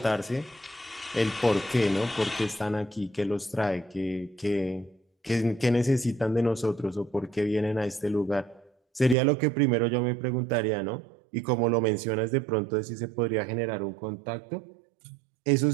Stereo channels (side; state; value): left; drops out; at 9.2 s